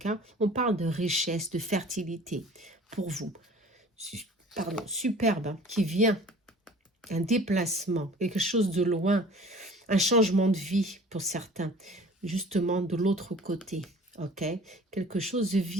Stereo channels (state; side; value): normal; both; correlation 0.47